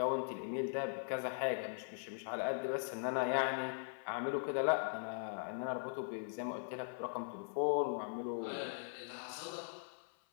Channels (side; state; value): right; silent; 51 dB below the other